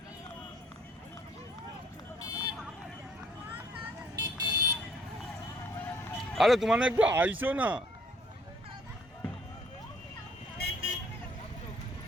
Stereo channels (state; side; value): normal; both; correlation 0.62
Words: আরে তোমার একটু আইসো না